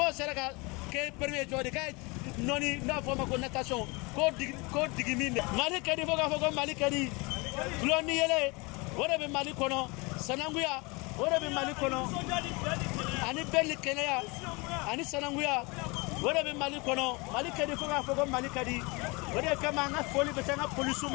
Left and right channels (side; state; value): right; quieter; 27.2 dB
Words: seraka ke premier jodi kay noni na forma ko natation ko digiminde mali kadi foko mali kadi gloni yele wora be mali kono sananguya wora be mali kono ani belli kenaya ani sananguya wora be mali kono mali kadi foko mali kadi wora kama nga foli be tanga